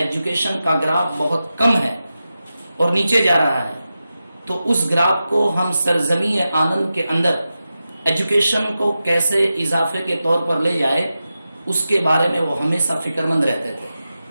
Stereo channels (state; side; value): inverted; both; correlation -0.92